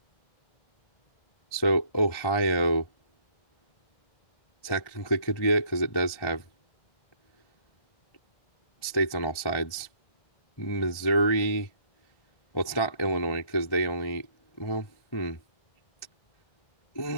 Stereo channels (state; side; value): late; right; 1.2 ms